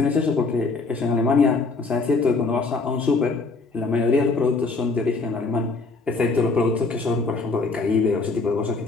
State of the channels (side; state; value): right; quieter; 3.9 dB